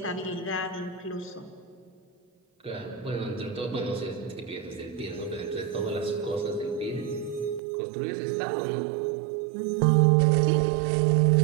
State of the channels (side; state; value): left; drops out; at 7.6 s